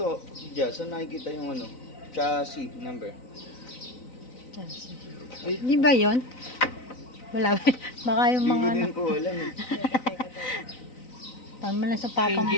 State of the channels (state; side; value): late; right; 3.9 ms